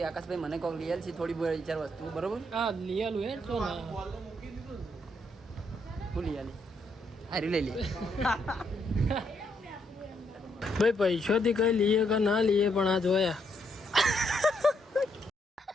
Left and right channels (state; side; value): normal; both; correlation 0.75